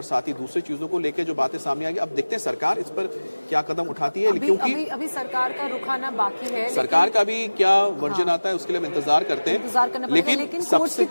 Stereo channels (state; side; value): inverted; both; correlation -1.00